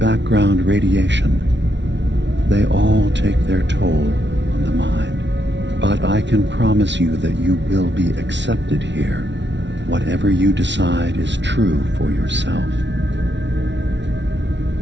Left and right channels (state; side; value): late; left; 0.52 ms